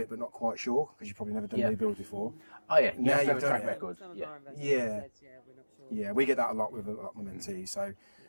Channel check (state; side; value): inverted; both; correlation -1.00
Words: but not quite sure, because you've probably never done new build before. Oh, yeah. Now you've done track it. record. Some of our investors said, we're not sure. Yeah, we get that a lot with my mentees. So,